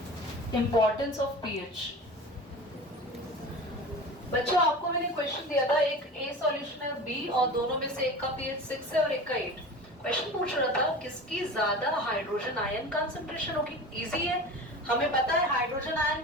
इंपॉर्टेंस ऑफ पीएच। बच्चों आपको मैंने क्वेश्चन दिया था, एक ए सॉल्यूशन है बी, और दोनों में से एक का पीएच 6 है और एक का 8। क्वेश्चन पूछ रहा था किसकी ज्यादा हाइड्रोजन आयन कंसंट्रेशन होगी। इजी है, हमें पता है हाइड्रोजन आयन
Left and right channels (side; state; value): both; normal; correlation 0.34